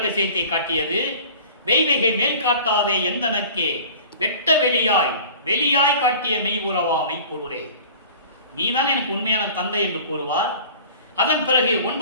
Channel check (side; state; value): both; inverted; correlation -0.43